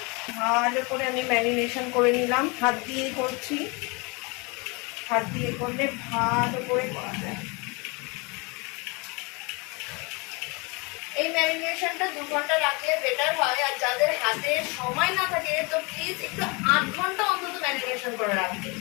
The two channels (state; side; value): quieter; right; 29.4 dB